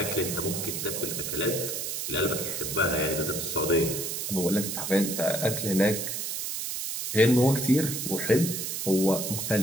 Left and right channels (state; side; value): noise; right; hiss, 3 dB below the sound